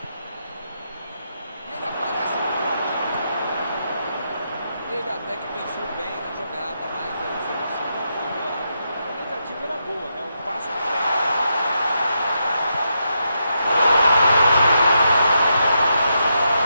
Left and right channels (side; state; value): both; inverted; correlation -0.82